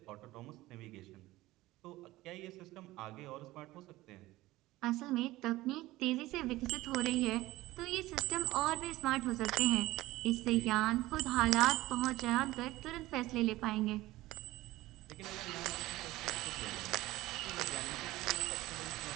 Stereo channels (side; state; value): left; quieter; 17.8 dB